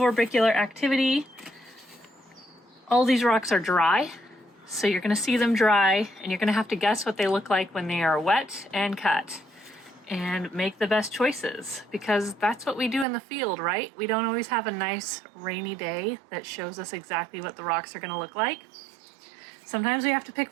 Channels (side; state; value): left; drops out; at 13.1 s